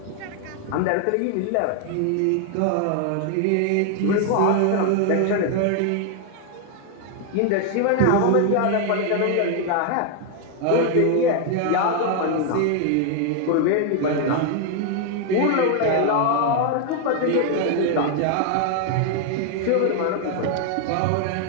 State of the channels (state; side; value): different; both; correlation 0.00